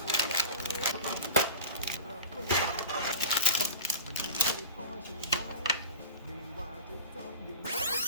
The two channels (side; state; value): both; inverted; correlation -0.31